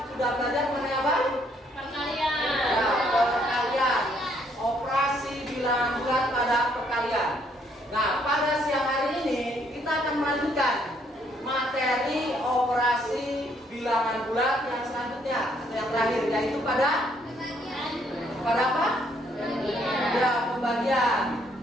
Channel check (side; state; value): both; normal; correlation 0.68